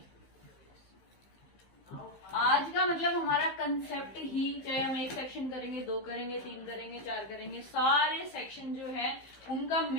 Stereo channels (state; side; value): late; right; 15 ms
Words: आज का मतलब हमारा कंसेप्ट ही, चाहे हम एक सेक्शन करेंगे, 2 करेंगे, 3 करेंगे, 4 करेंगे, सारे सेक्शन जो है उनका